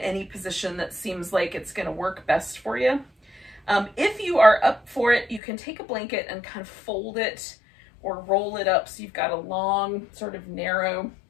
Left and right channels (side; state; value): right; drops out; at 5.4 s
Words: position that seems like it's going to work best for you. If you are up for it, you can take a blanket and kind of fold it or roll it up so you've got a long, sort of narrow